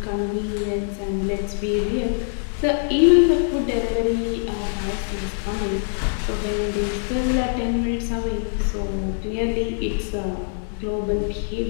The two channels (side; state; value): right; silent; digital silence